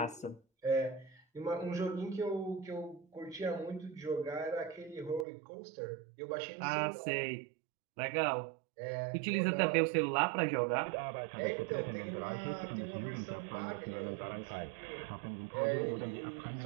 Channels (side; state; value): left; drops out; at 5.2 s